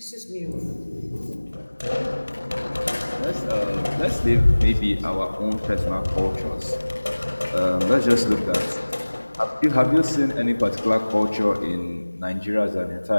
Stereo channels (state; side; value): inverted; both; correlation -1.00